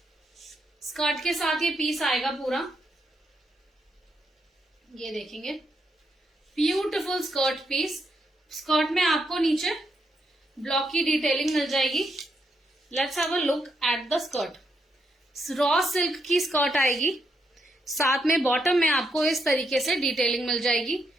Skirt के साथ ये पीस आएगा पूरा। ये देखेंगे ब्यूटिफुल स्कर्ट पीस। स्कर्ट में आपको नीचे ब्लॉक की डिटेलिंग मिल जाएगी। Let's have a look at the skirt. Raw silk की स्कर्ट आएगी, साथ में बॉटम में आपको इस तरीके से डिटेलिंग मिल जाएगी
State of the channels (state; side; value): normal; both; correlation 0.79